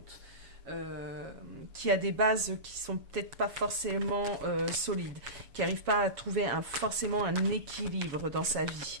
Qui a des bases qui sont peut-être pas forcément solides, qui n'arrive pas à trouver forcément un équilibre dans sa vie.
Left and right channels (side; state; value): left; late; 7.3 ms